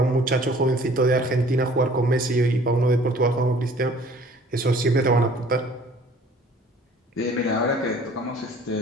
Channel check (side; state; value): both; normal; correlation 0.53